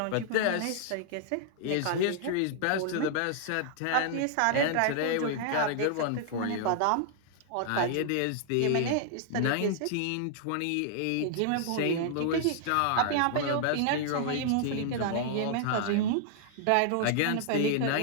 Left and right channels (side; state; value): both; different; correlation -0.01